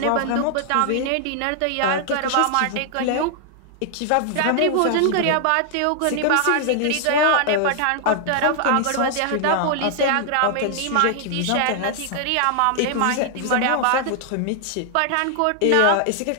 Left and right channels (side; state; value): both; different; correlation 0.00